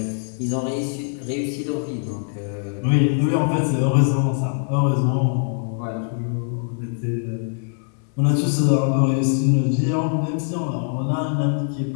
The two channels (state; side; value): silent; right; 64 dB below the other